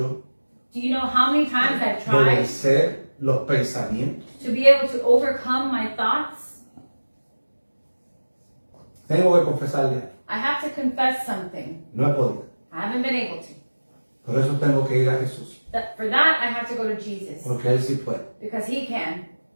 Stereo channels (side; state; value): both; inverted; correlation -1.00